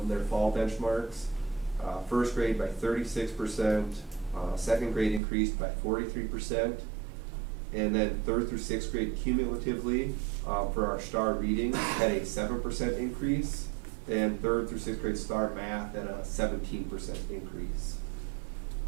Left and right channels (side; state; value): left; drops out; at 5.2 s